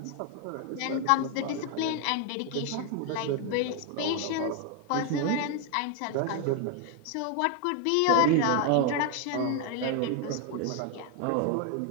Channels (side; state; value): both; different; correlation 0.01